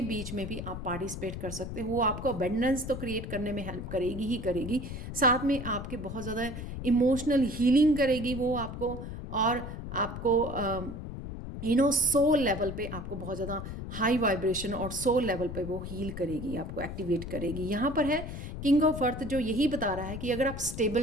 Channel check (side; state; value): left; noise; rumble, 8 dB below the sound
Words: बीच में भी आप पार्टिसिपेट कर सकते हो। वो आपको अबंडेंस तो क्रिएट करने में हेल्प करेगी ही करेगी, साथ में आपके बहुत ज़्यादा इमोशनल हीलिंग करेगी वो आपको, और आपको सोल लेवल पे आपको बहुत ज़्यादा हाई वाइब्रेशन और सोल लेवल पे वो हील करेगी, आपको एक्टिवेट करेगी। यहाँ पर है किंग ऑफ अर्थ, जो यही बता रहा है कि अगर आप